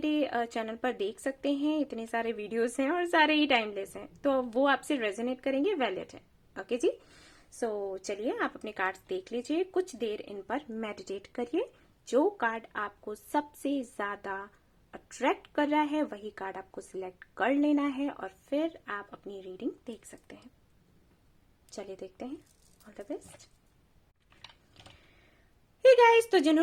चैनल पर देख सकते हैं। इतने सारे वीडियोस हैं और सारे ही टाइमलेस हैं, तो वो आपसे रेजोनेट करेंगे, वैलिड है। ओके जी, सो चलिए आप अपने कार्ड्स देख लीजिए, कुछ देर इन पर मेडिटेट करिए। जो कार्ड आपको सबसे ज्यादा अट्रैक्ट कर रहा है वही कार्ड आपको सिलेक्ट कर लेना है और फिर आप अपनी रीडिंग देख सकते हैं। चलिए देखते हैं। All the best. Hey guys, तो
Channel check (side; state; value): both; identical; correlation 1.00